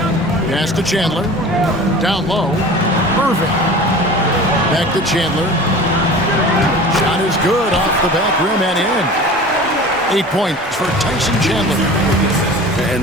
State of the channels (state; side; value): normal; both; correlation 0.39